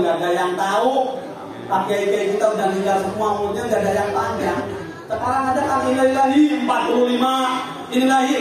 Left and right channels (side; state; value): both; identical; correlation 1.00